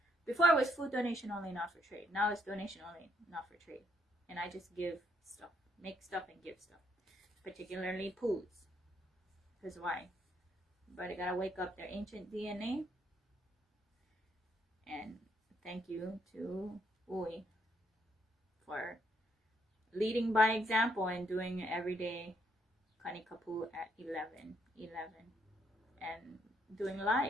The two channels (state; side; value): normal; both; correlation 0.73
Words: Before it was food donation only, not for trade. Now it's donation only, not for trade. And I just give stuff, make stuff and give stuff. Particularly poos. Because why? But I gotta wake up their ancient DNA. And thank you to U'i for leading by example and doing everyday Kanikapu at 11 and doing